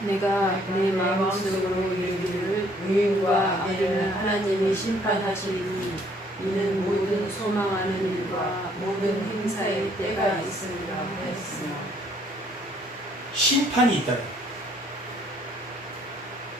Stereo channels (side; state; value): both; normal; correlation 0.63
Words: 내가 내 마음속으로 이르기를 의인과 악인을 하나님이 심판하시리니 이는 모든 소망하는 일과 모든 행사의 때가 있으리라 하였으나. 심판이 있다.